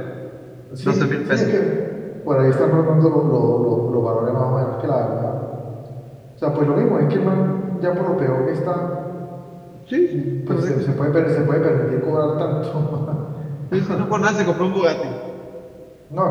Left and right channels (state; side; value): identical; both; correlation 1.00